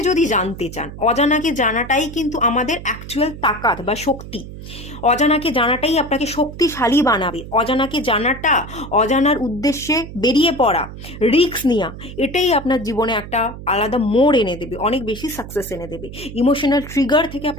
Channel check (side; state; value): right; noise; hum, 12 dB below the sound